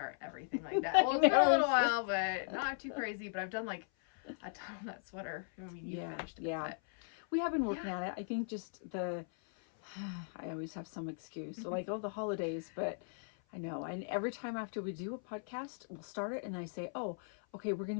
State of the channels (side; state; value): right; silent; 53 dB below the other